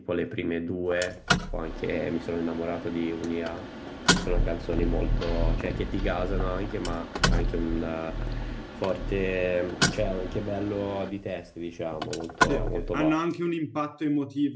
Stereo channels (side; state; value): both; identical; correlation 1.00